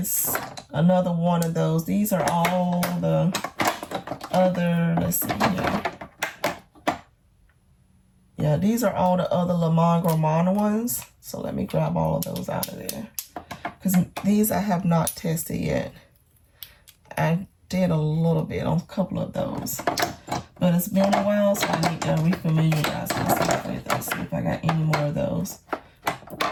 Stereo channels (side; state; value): both; identical; correlation 1.00